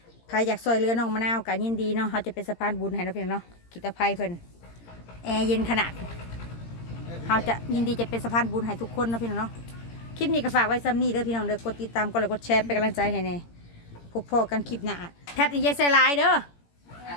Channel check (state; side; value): late; right; 17 ms